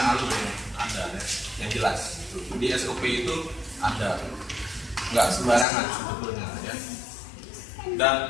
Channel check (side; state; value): right; drops out; at 5.7 s